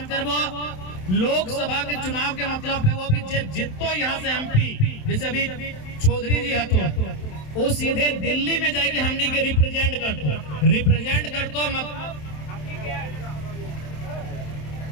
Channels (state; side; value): late; right; 27 ms